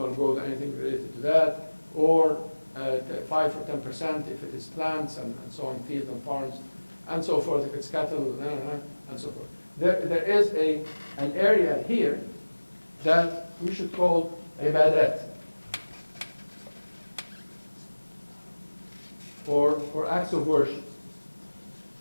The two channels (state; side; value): inverted; both; correlation -1.00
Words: gold, anything related to that, or 5 or 10% if it is plants and so on, fields and farms, and so forth, if it's cattle, and so forth. There is an area here that we should call ibadat, for acts of worship.